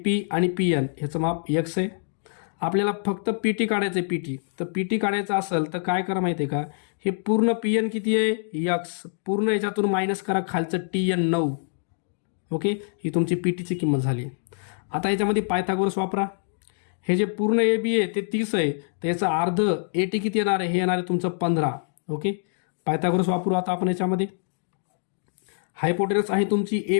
आणि PN ह्याचं माप X आहे. आपल्याला फक्त PT काढायचं आहे. PT तर PT काढायचं असेल तर काय करा माहिती आहे का, हे पूर्ण PN किती आहे? X. पूर्ण याच्यातून मायनस करा खालचं TN 9. ओके, ही तुमची PTची किंमत झाली. आता याच्यामध्ये पायथागोरस वापरा. हे जे पूर्ण AB आहे ते 30 आहे, तर याचं अर्ध AT किती येणार आहे? हे येणार आहे तुमचं 15. ओके, पायथागोरस वापरू आता आपण याच्यामध्ये. हायपोटेनस आहे तुमची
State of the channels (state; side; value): silent; right; digital silence